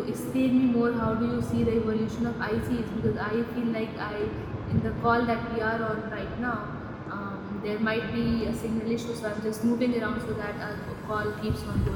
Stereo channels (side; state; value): both; identical; correlation 1.00